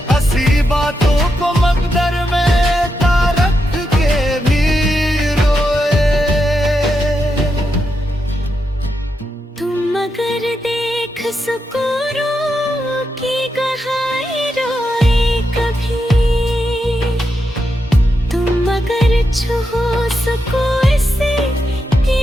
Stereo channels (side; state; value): both; normal; correlation 0.85